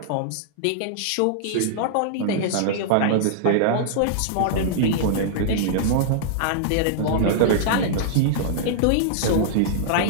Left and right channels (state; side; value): different; both; correlation -0.01